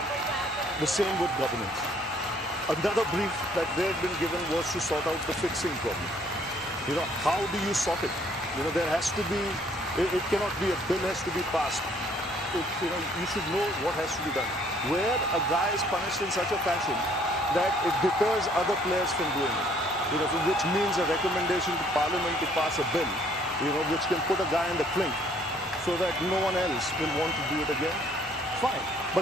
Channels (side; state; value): both; normal; correlation 0.62